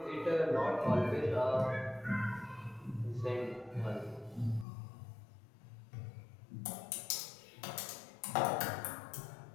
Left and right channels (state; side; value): drops out; right; at 4.7 s